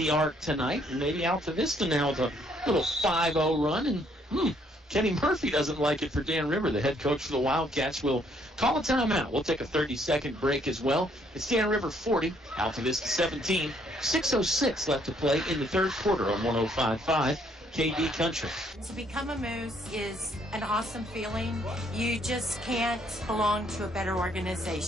arc tonight. And maybe Altavista now with a little 5-0 run. And Kenny Murphy doesn't like it for Dan River. The head coach for the Wildcats will call a timeout. We'll take a 30-second break as well. It's Dan River 40, Altavista 17. 6:06 left to play in the third quarter on 105.5 KD Country. To become a Moose is an awesome feeling. You just can't belong to a better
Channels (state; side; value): normal; both; correlation 0.67